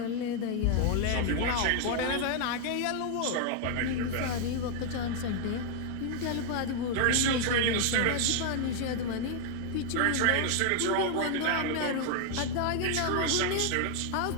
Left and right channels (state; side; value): different; both; correlation 0.00